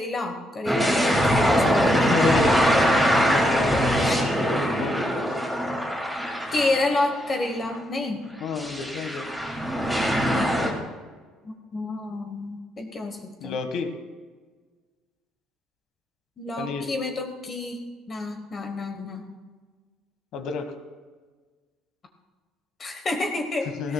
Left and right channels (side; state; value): both; normal; correlation 0.79